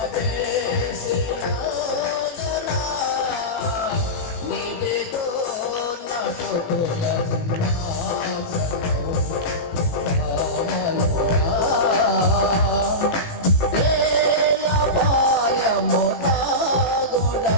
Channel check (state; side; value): late; right; 18 ms